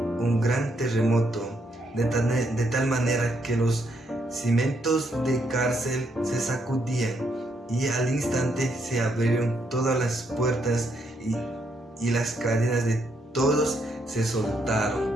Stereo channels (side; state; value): both; normal; correlation 0.75